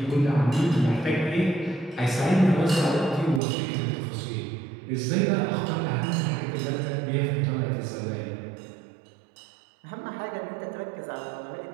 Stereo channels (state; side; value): drops out; left; at 3.4 s